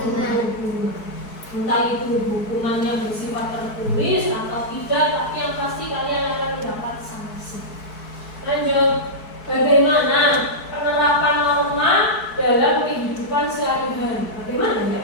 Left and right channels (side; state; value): right; late; 4.6 ms